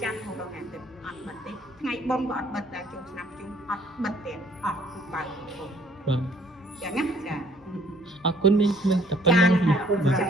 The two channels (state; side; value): normal; both; correlation 0.61